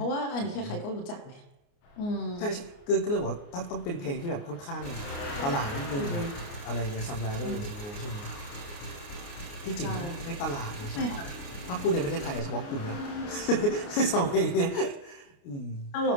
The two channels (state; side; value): late; right; 29 ms